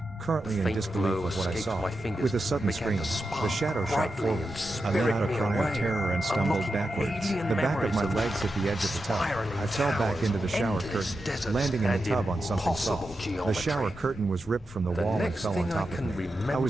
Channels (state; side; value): normal; both; correlation 0.89